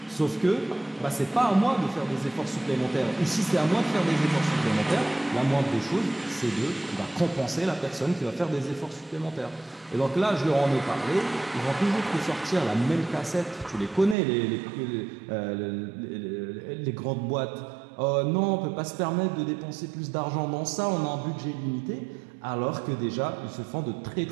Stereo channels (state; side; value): drops out; left; at 14.2 s